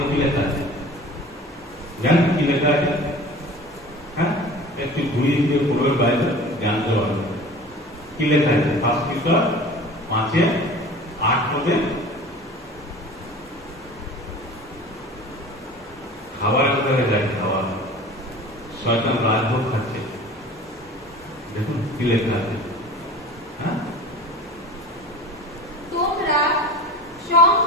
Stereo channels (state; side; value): normal; both; correlation 0.40